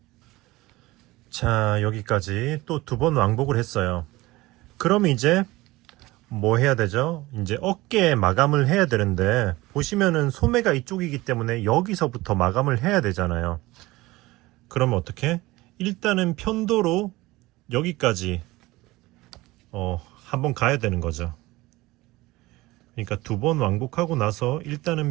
자, 여기까지 또 2번 왕복을 했어요. 그럼 이제 뭐 해야 되죠? 이제 어깨에 마감을 해야 되는데, 보시면은 소매가 이쪽이기 때문에 여기서부터 마감을 해야 되잖아요. 그러면 어떻게? 일단은 편도로 여기까지 한번 가야 되는 거죠. 그러니까 2번 왕복하고 나서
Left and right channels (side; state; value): left; quieter; 19.8 dB